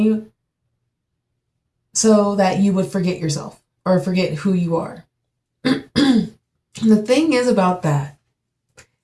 you so that you would forget yourself or forget who you are. The thing is about that,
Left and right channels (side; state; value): both; identical; correlation 1.00